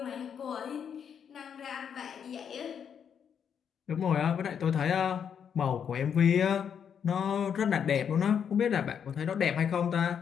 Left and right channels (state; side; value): quieter; right; 7.8 dB